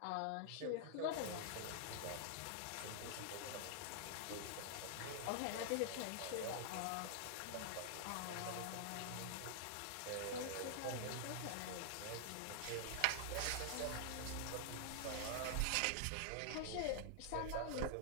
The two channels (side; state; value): both; different; correlation -0.01